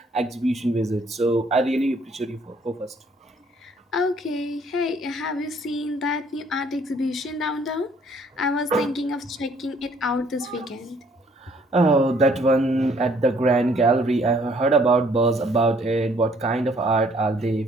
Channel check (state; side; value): normal; both; correlation 0.62